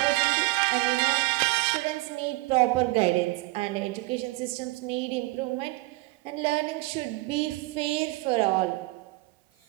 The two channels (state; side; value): quieter; left; 22.3 dB